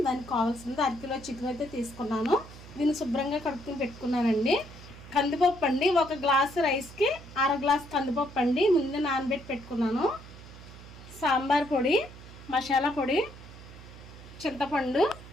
దానికి కావాల్సింది అరకిలో చికెన్ అయితే తీసుకున్నాను. దీన్ని శుభ్రంగా కడుక్కుని పెట్టుకున్నానండి. కందిపప్పు అండి, ఒక గ్లాసు రైస్కి అర గ్లాస్ కందిపప్పు అండి ముందే నానబెట్టి పెట్టుకున్నాను. సాంబార్ పొడి, మసాలా పొడి, చింతపండు,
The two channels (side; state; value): right; noise; hum, 17 dB below the sound